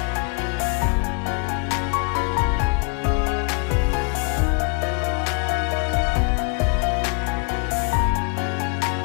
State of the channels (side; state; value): right; quieter; 33.9 dB